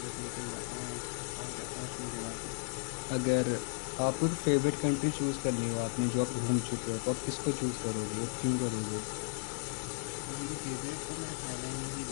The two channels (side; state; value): right; silent; 54 dB below the other